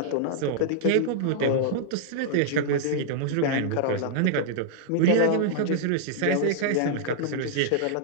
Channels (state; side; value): different; both; correlation -0.01